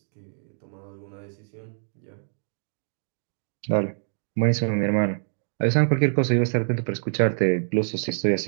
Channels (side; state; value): left; silent; digital silence